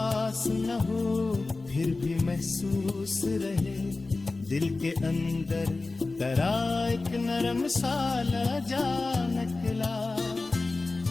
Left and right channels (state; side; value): quieter; right; 3.5 dB